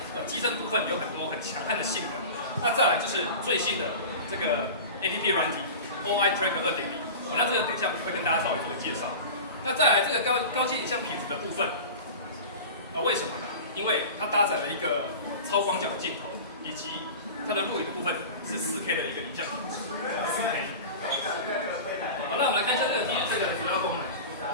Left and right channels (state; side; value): inverted; both; correlation -0.33